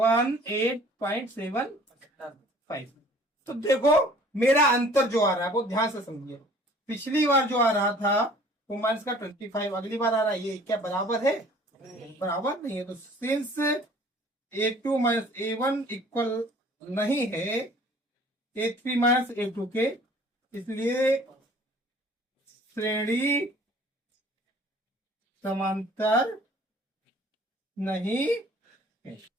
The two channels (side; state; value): both; normal; correlation 0.52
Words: तो देखो मेरा अंतर जो आ रहा है वो ध्यान से समझिए। पिछली बार जो आ रहा था वो माइनस का 25, अगली बार आ रहा है ये क्या बराबर है, बराबर नहीं है। तो since A2 minus A1 equal नहीं है A3 माइनस A2 के, इसलिए श्रेणी समांतर नहीं है।